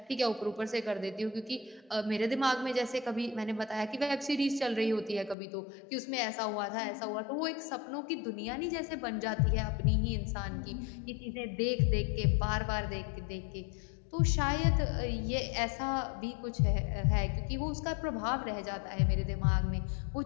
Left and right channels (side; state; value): right; drops out; at 5.4 s